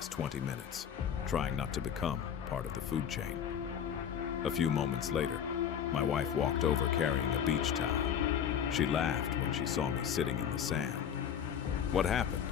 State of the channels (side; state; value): right; quieter; 8.5 dB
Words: 20 minutes trying not to become part of the food chain. A few moments later, my wife walked over carrying a beach towel. She laughed when she saw me sitting in the sand. "What happened?"